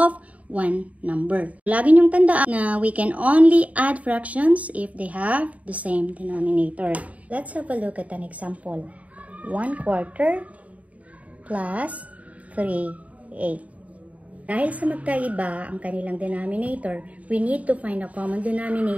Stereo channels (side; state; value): left; late; 0.069 ms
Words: one number. Lagi niyong tandaan na we can only add fractions if they have the same denominator. Let's have a look at an example. 1/4 plus 3/8. Dahil sa magkaiba ang kanilang denominator, we need to find a common